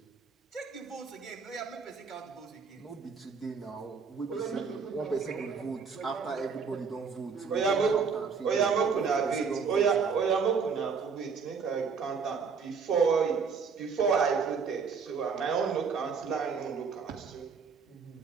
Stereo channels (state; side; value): quieter; left; 5.7 dB